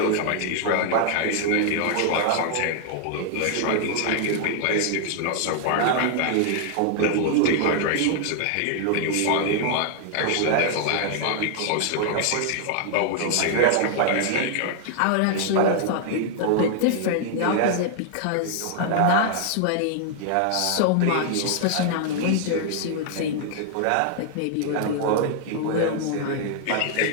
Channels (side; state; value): both; different; correlation 0.00